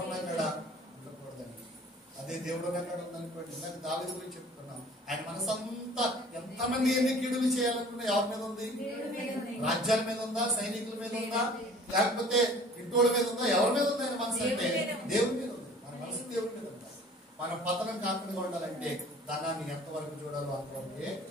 ఉన్నక్కడ ఉండకూడదండి. అదే దేవుడు ఉన్నక్కడ ఉందనుకోండి. ఇందాక దావీదు గురించి చెప్పుకున్నాం. ఆయన మనసు అంతా ఎంతమంది ఎన్ని కీడులు చేయాలనుకున్నా ఎవరి మీద ఉంది? రాజ్యాల మీద ఉందా? సైనికుల మీద ఉందా? లేకపోతే ఇంటోళ్ళ మీద ఉందా? ఎవరి మీద ఉంది ఆయన మనసు? అంటే దేవుడి మీద ఉంది. మన మనసు దేవుడి మీద ఉందా? మనం పతనం కాకుండా ఉండాలంటే ధనాన్ని ఎంతవరకు చూడాలో అంతవరకే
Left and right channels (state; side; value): normal; both; correlation 0.49